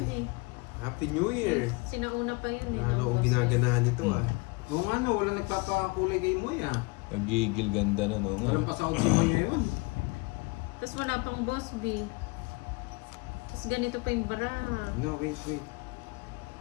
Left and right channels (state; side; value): quieter; right; 27.7 dB